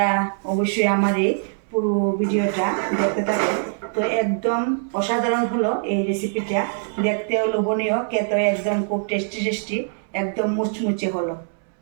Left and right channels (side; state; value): left; silent; 64 dB below the other